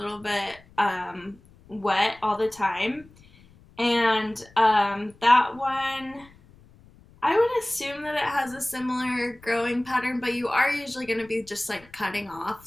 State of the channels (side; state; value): left; noise; rumble, 26 dB below the sound